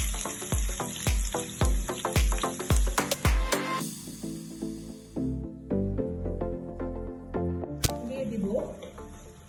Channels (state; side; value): identical; both; correlation 1.00